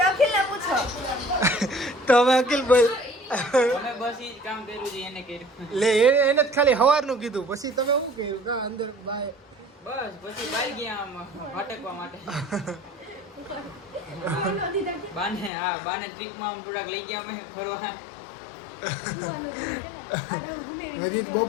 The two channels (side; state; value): right; drops out; at 15.5 s